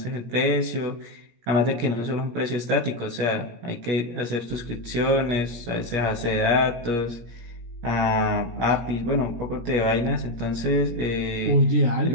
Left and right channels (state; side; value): late; left; 17 ms